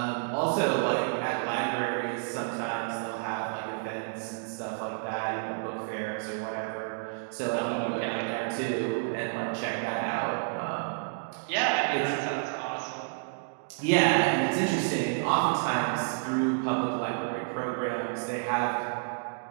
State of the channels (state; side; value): silent; left; digital silence